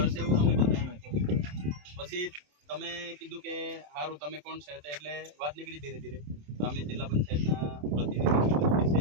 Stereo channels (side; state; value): left; late; 27 ms